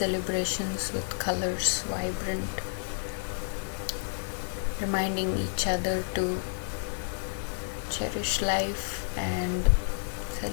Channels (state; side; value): silent; right; digital silence